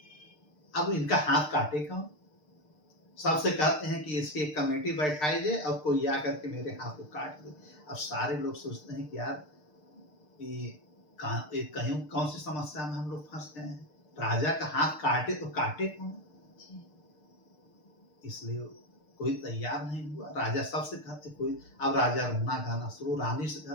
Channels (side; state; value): right; late; 6.6 ms